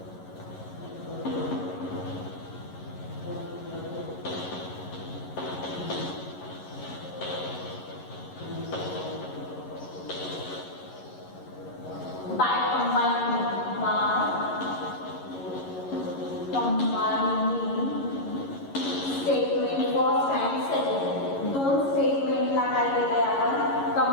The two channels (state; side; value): late; right; 11 ms